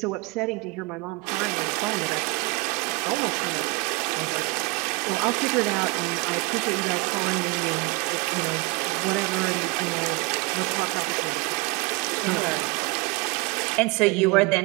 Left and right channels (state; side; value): quieter; left; 26.5 dB